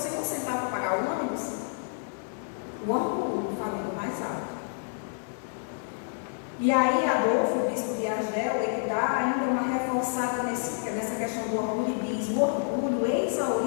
um centavo para pagar o ônibus. O orgulho, falando mais alto. E aí Adolfo, o bispo de Argel, ele dá ainda uma reforçada nessa questão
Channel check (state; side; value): silent; right; 59 dB below the other